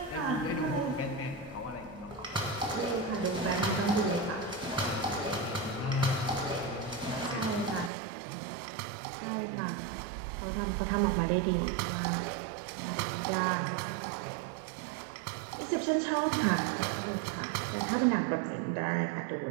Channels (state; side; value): drops out; left; at 7.9 s